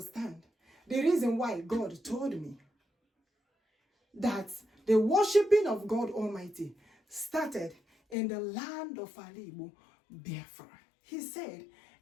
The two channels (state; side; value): drops out; right; at 8.2 s